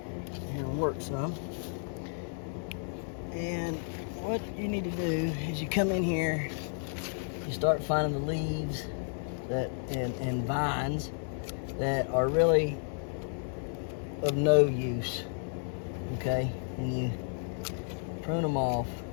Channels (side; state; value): right; silent; digital silence